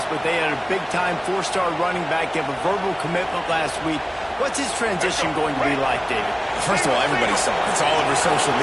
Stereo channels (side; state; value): both; identical; correlation 1.00